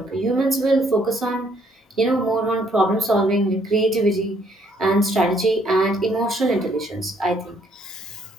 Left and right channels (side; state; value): both; normal; correlation 0.67